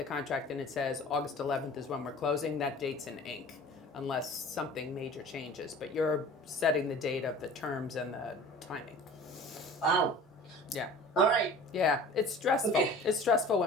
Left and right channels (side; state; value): both; normal; correlation 0.43